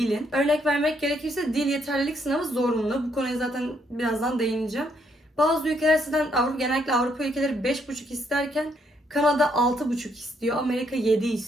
Örnek vermek gerekirse dil yeterlilik sınavı zorunlu. Bu konuya zaten birazdan değineceğim. Bazı ülkeler sizden genellikle Avrupa ülkeleri 5,5 isterken Kanada 6,5 istiyor, Amerika 7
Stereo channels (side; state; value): both; normal; correlation 0.73